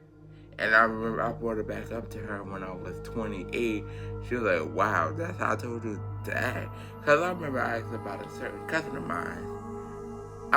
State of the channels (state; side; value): identical; both; correlation 1.00